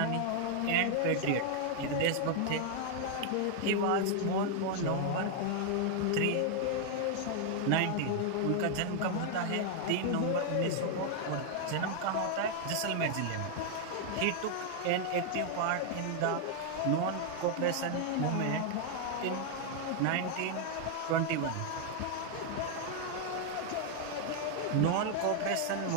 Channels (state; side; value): different; both; correlation 0.00